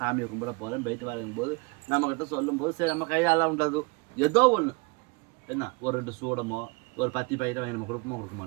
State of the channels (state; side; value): quieter; left; 28.8 dB